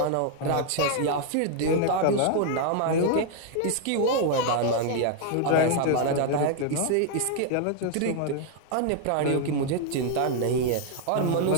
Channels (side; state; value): both; different; correlation 0.00